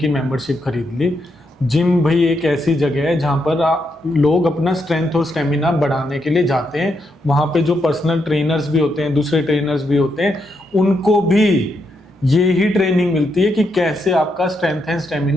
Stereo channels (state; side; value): normal; both; correlation 0.80